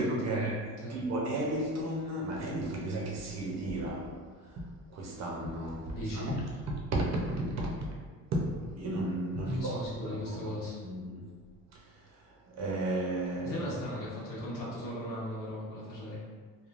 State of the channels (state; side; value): normal; both; correlation 0.38